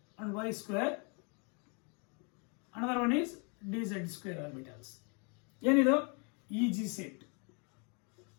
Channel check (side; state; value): right; quieter; 35.0 dB